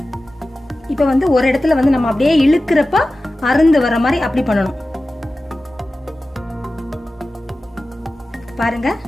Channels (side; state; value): both; normal; correlation 0.95